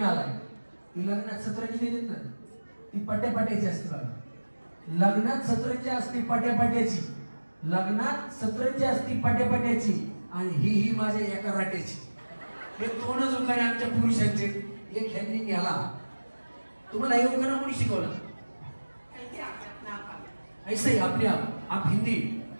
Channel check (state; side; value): inverted; both; correlation -1.00